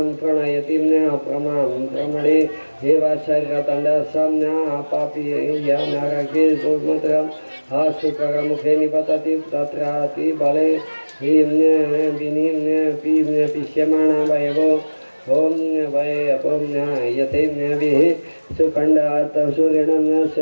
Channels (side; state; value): both; inverted; correlation -1.00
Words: प्रणयति प्रमां प्रमणे हे वाशर्यतंडसं पापी या नरके दुर्मत्रं हा शुक्रमुखे निपतति तत्राति बले ह्रीं विनीं पीं पिष्यमाणा वयवो ओम वै अपम यथेम्यभिः सुखण्डात् सूर्यणं